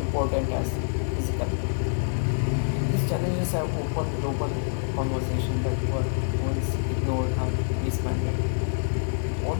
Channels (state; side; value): silent; right; 61 dB below the other